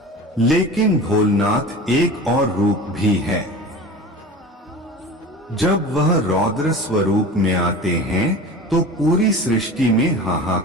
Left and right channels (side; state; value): both; normal; correlation 0.36